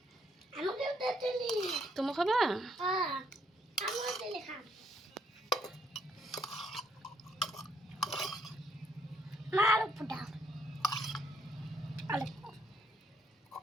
আমাকে দাও জেলি। তুমি খাবা? হ্যাঁ, আমাকে জেলি খাও। মার পুটা। আলে।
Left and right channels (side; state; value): both; normal; correlation 0.71